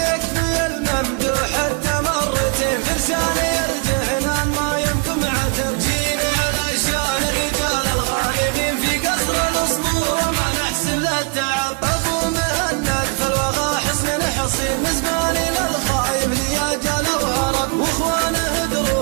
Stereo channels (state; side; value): quieter; left; 36.6 dB